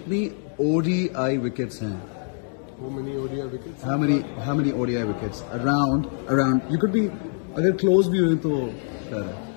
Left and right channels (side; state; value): right; silent; 62 dB below the other